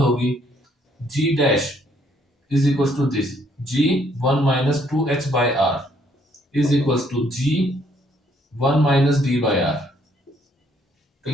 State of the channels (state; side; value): normal; both; correlation 0.67